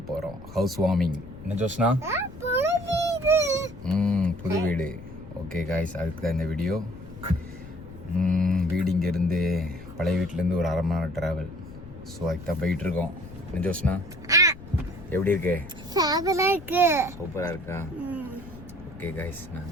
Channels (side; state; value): left; noise; rumble, 16 dB below the sound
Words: போகிறோம். House warming. என்ன ஜோஸ்னா? புது வீடு. ஓகே காய்ஸ், அதுக்கு தான் இந்த வீடியோ. வீடு இங்கேருந்து பழைய வீட்டிலேருந்து ஒரு 1/2 மணி நேரம் ட்ராவல். ஸோ அதுக்கு தான் போயிட்டுருக்கோம். என்ன ஜோஸ்னா, எப்படி இருக்கு? சூப்பராக இருக்கா? ஓகே காய்ஸ், நான்